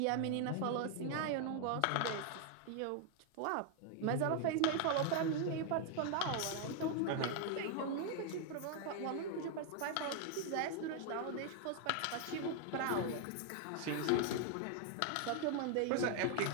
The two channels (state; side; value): different; both; correlation 0.00